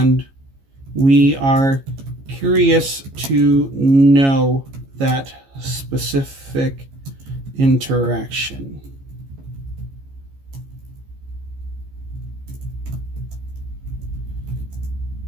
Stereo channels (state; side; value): late; left; 15 ms